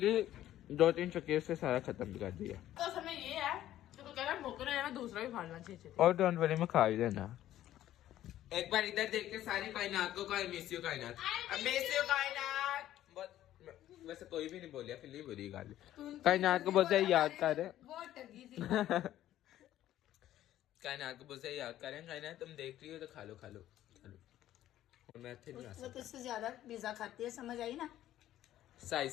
2-3 चक्कर से सारा खत्म भी कर दिया। तो समय ये है तो कह रहा भूख रहे हैं, दूसरा भी खा लेना चाहिए। और डोंट वरी मैं खा ही देना। एक बार इधर देख के सारी कायनात को कहे मिस यू कायनात, मिस यू कायनात। वैसे कोई भी नहीं बोलिया, फिर नहीं बुरी गाली। कायनात को बहुत सारी याद कर रहे कायनात को बहुत सारी याद कर रहे हैं। कायनात तुम देख रही हो तो खा लो खा लो खा लो। और मैं फिर नहीं आ वो सकता। तुझसे ज्यादा पिज्जा खाती है, समझ आई ना? साइज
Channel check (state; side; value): quieter; right; 13.0 dB